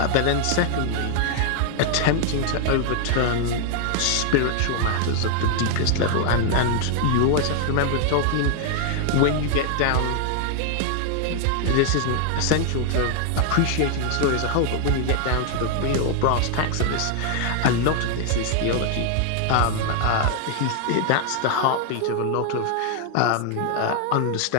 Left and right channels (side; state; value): both; different; correlation 0.00